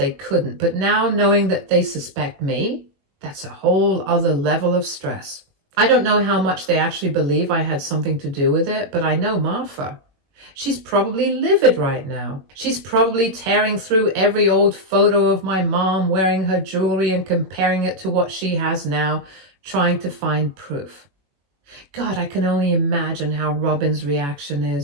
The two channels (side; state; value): left; late; 21 ms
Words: couldn't. But now, knowing that they suspect me, that's a whole other level of stress. I don't know how much they actually believe I had something to do with it, but I know Martha. She's probably livid right now. She's probably tearing through every old photo of my mom wearing her jewelry and comparing it to what she has now, trying to find proof. God, I can only imagine how Robin's reaction